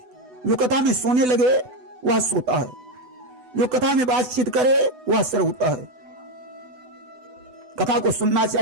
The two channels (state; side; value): late; left; 8.0 ms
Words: जो कथा में सोने लगे वह सोता है, जो कथा में बातचीत करे वह श्रोता है। कथा को सुनना